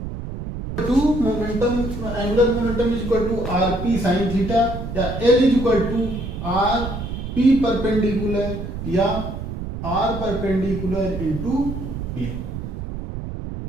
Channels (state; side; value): noise; right; rumble, 6 dB below the sound